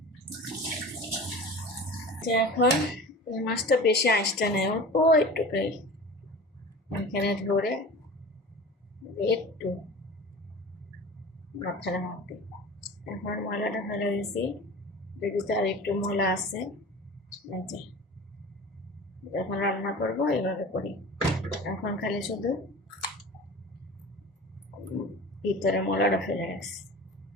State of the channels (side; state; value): both; normal; correlation 0.37